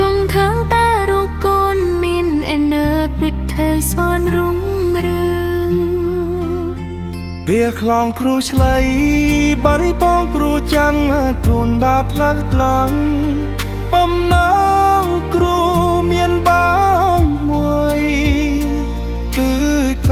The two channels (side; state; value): both; identical; correlation 1.00